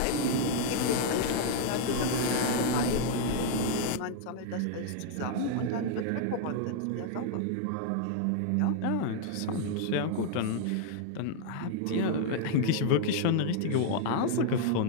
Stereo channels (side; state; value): both; different; correlation 0.00